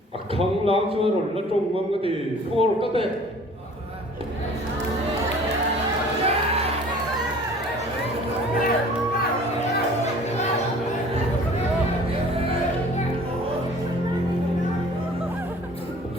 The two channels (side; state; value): both; normal; correlation 0.49